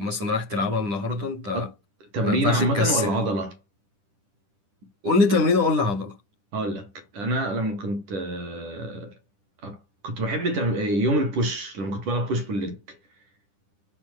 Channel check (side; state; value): left; late; 10 ms